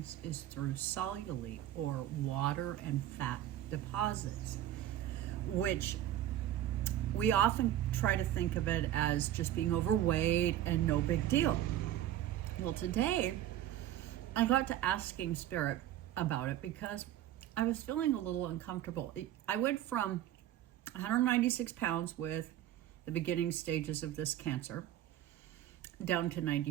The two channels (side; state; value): left; quieter; 12.5 dB